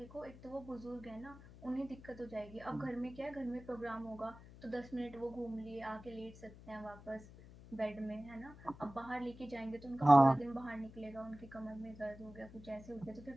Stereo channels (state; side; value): noise; left; hum, 18 dB below the sound